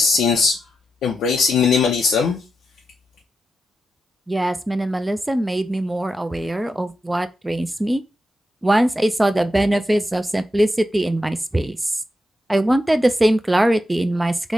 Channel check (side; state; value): both; normal; correlation 0.87